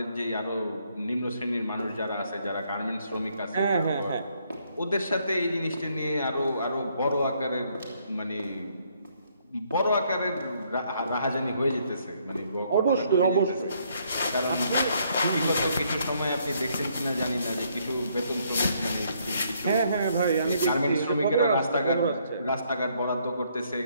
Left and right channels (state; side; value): inverted; both; correlation -0.70